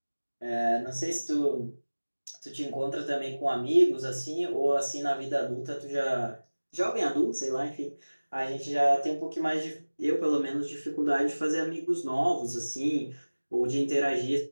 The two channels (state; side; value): inverted; both; correlation -1.00